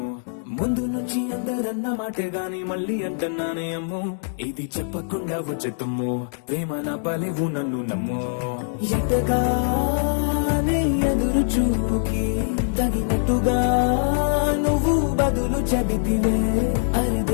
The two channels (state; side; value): silent; right; digital silence